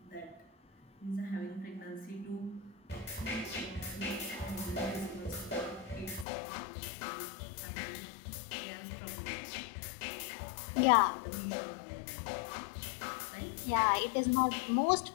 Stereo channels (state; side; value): drops out; right; at 6.2 s